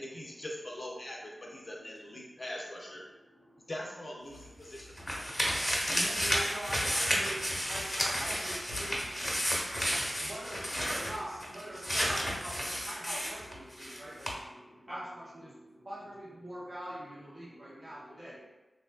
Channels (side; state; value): both; normal; correlation 0.96